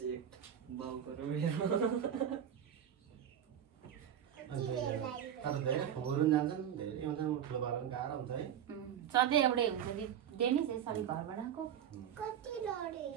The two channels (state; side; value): quieter; left; 9.5 dB